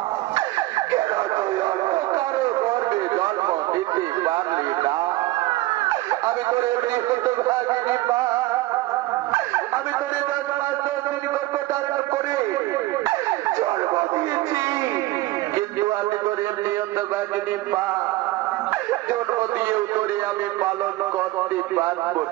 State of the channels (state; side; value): quieter; left; 18.2 dB